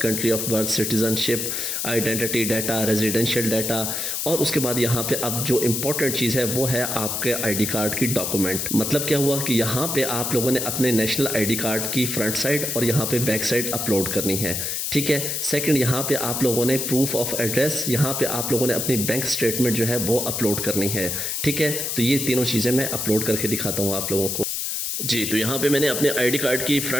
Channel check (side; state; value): left; noise; hiss, 2 dB below the sound